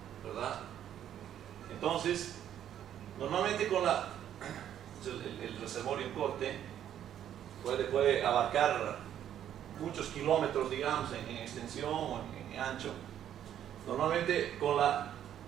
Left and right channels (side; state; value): left; quieter; 10.5 dB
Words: ¿verdad? Entonces, normalmente con el reservorio en corte puede abarcar muchos kilómetros, digamos, en extensión o en ancho. Normalmente con la